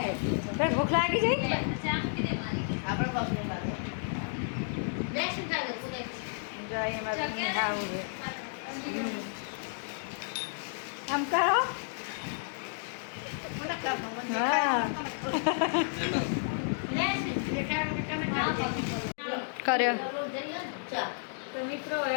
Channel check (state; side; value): silent; right; digital silence